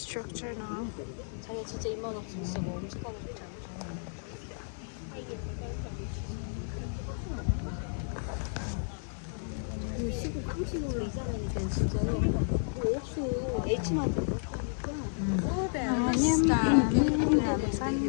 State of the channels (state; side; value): silent; right; 56 dB below the other